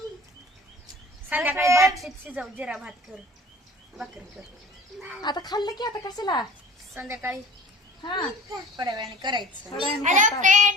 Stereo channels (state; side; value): normal; both; correlation 0.44